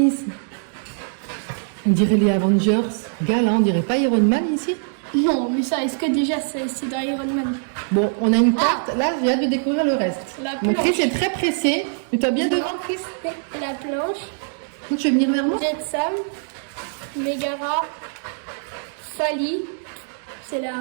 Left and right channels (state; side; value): silent; left; digital silence